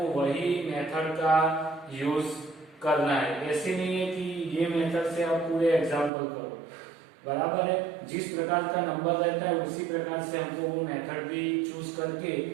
वही मेथड का यूज करना है। ऐसे नहीं है कि ये मेथड से आप पूरे एग्जाम्पल करो, बराबर है। जिस प्रकार का नंबर रहता है उसी प्रकार से हमको वो मेथड भी चूज करके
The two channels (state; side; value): drops out; left; at 6.1 s